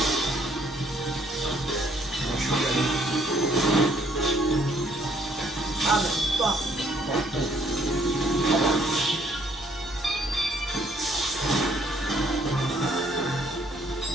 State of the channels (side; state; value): both; normal; correlation 0.65